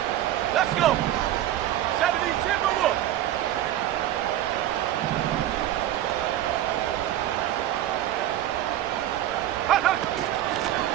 Let's go! 70 Timberwolves!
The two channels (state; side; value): quieter; left; 12.8 dB